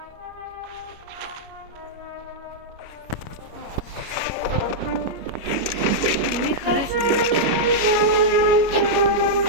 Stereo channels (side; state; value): left; late; 29 ms